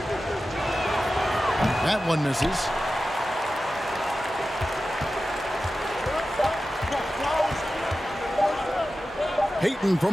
That one misses. Peyton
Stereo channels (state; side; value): normal; both; correlation 0.94